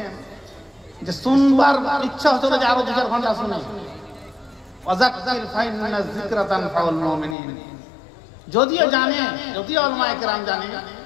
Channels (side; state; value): right; drops out; at 7.4 s